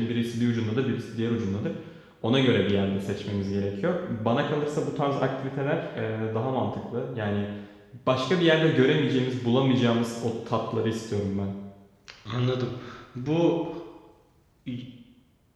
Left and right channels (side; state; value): both; identical; correlation 1.00